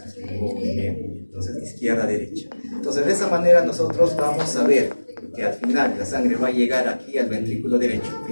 Muy bien. Entonces, izquierda-derecha. Entonces, de esa manera nosotros vamos a ver que al final la sangre va a llegar aquí al ventrículo derecho,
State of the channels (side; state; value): both; inverted; correlation -1.00